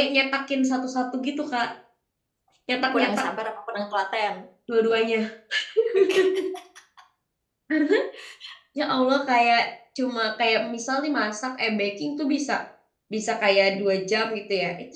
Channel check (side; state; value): both; identical; correlation 1.00